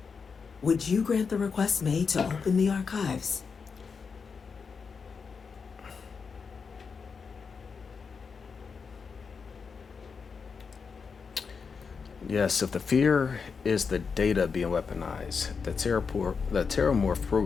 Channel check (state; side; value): quieter; right; 5.5 dB